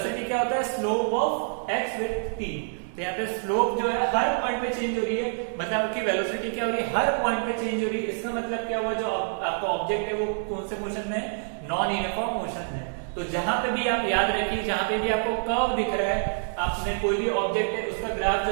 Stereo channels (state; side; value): silent; left; digital silence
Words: क्या होता है, slope of x with T. तो यहाँ पे स्लोप जो है हर पॉइंट पे चेंज हो रही है, मतलब आपकी वेलोसिटी क्या हो रही है, हर पॉइंट पे चेंज हो रही है। इसका मतलब क्या हुआ, जो आपका ऑब्जेक्ट है वो कौन से मोशन में है, नॉन यूनिफॉर्म मोशन में। तो जहां पे भी आप याद रखिए, जहां पे भी आपको कर्व दिख रहा है, आपने कोई भी ऑब्जेक्ट है उसका ग्राफ